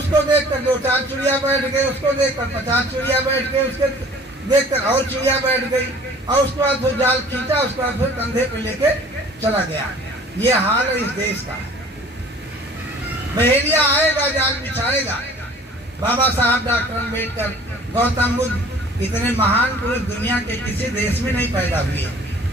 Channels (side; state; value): both; normal; correlation 0.50